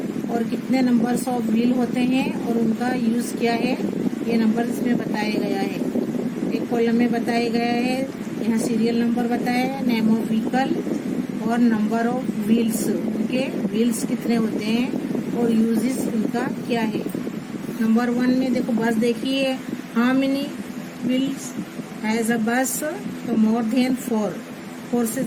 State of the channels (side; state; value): both; identical; correlation 1.00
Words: और कितने नंबर्स ऑफ व्हील होते हैं और उनका यूज क्या है ये नंबर इसमें बताया गया है। एक कॉलम में बताया गया है, यहाँ सीरियल नंबर बताया है, नेम ऑफ व्हीकल और नंबर ऑफ व्हील्स, उनके व्हील्स कितने होते हैं और यूजेस उनका क्या है। नंबर 1 में देखो बस देखिए, how many wheels has a बस, तो मोर देन 4 से